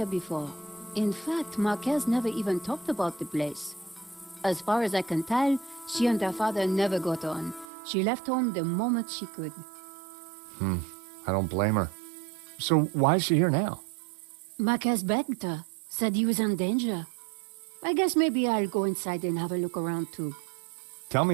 before. In fact, Marquez never even talked about the place. As far as I can tell, she and her father never got on. She left home the moment she could. I don't blame her. So, why is she here now? Marquez begged her, said he was in danger. I guess maybe I'll go inside and have a look around too. Tell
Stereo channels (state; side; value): drops out; left; at 7.7 s